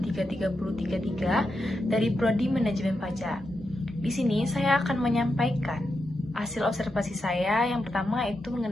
dari Prodi Manajemen Pajak. Di sini saya akan menyampaikan hasil observasi saya. Yang pertama itu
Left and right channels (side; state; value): both; normal; correlation 0.86